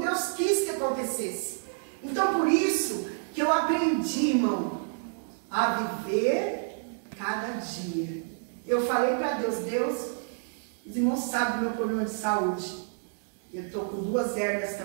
Deus quis que acontecesse. Então, por isso que eu aprendi, irmão, a viver cada dia. Eu falei para Deus, Deus, os irmãos sabem do meu problema de saúde. Eu estou com 2 hérnias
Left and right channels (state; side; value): silent; left; digital silence